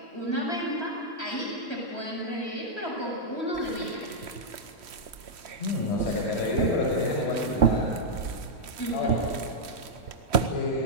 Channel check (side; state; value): left; late; 3.1 ms